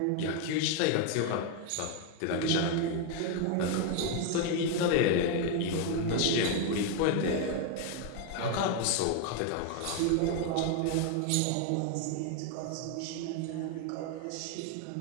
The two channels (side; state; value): both; different; correlation 0.01